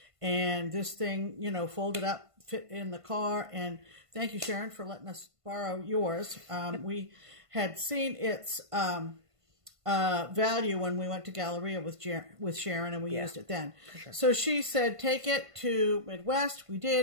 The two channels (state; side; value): late; left; 1.5 ms